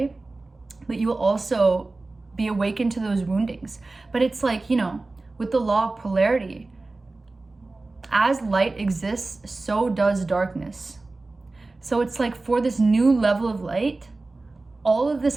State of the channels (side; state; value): left; quieter; 3.3 dB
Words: but you will also be awakened to those woundings. But it's like, you know, with the law of polarity, as light exists, so does darkness. So it's like, for this new level of light, all of this